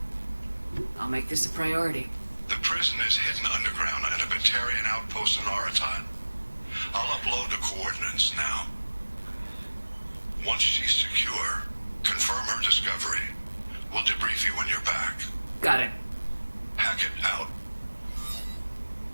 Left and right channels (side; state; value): both; inverted; correlation -1.00